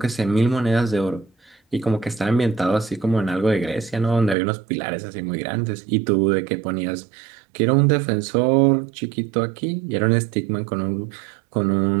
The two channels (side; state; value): left; drops out; at 4.4 s